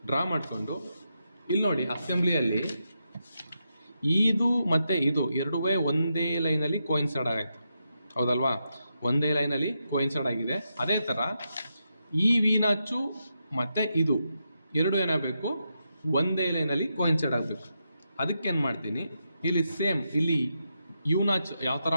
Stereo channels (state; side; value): inverted; both; correlation -0.85